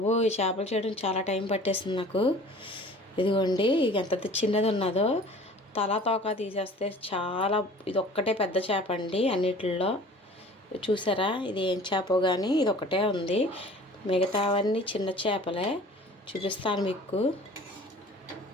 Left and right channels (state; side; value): normal; both; correlation 0.46